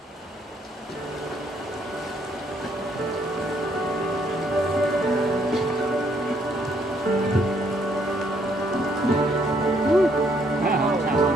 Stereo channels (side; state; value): both; normal; correlation 0.68